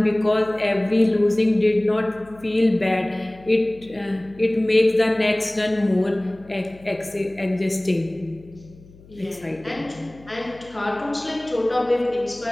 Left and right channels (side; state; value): left; noise; hum, 23 dB below the sound